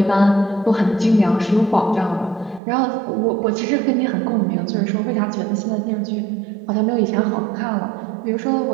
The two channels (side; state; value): left; drops out; at 2.6 s